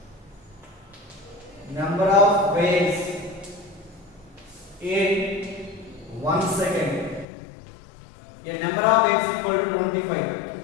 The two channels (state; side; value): drops out; right; at 7.2 s